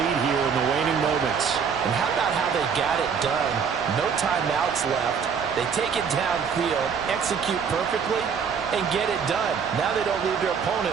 here in the waning moments. And how about how they got it done? No timeouts left. They take it downfield, execute perfectly, and get it done. Now they don't leave their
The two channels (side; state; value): left; quieter; 6.5 dB